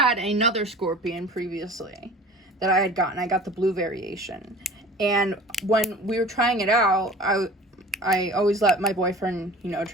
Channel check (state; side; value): normal; both; correlation 0.42